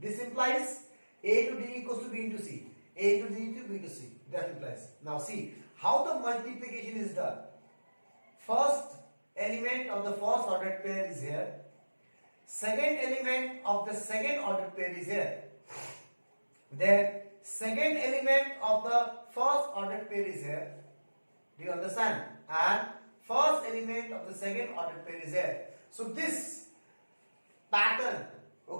implies A to D equals to B into C. A to D to B to C. That implies. Now see how the multiplication is done. First element of the first ordered pair is here. Second element of the second ordered pair is here. Then second element of the first ordered pair is here. Do you understand? And first element of the second ordered pair is here. So this pattern,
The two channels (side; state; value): both; inverted; correlation -1.00